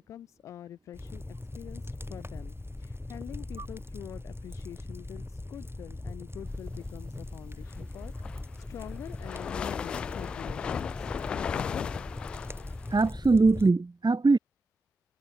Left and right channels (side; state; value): both; normal; correlation 0.87